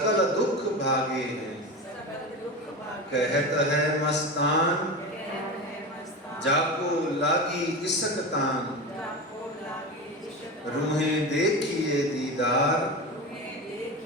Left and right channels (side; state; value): both; normal; correlation 0.25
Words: दुख भागे हैं। कहत है मस्तान, जाको लागी इसकतान। रूहें देखिए दीदार,